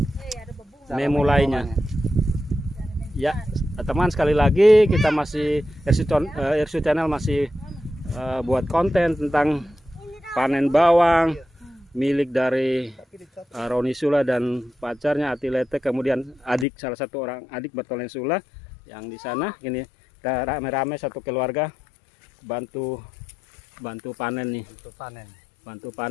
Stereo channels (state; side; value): drops out; right; at 16.7 s